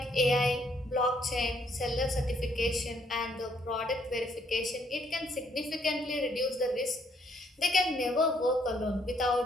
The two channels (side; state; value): both; normal; correlation 0.68